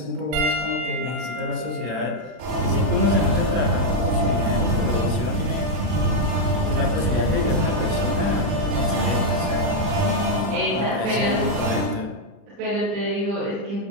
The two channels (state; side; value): late; left; 40 ms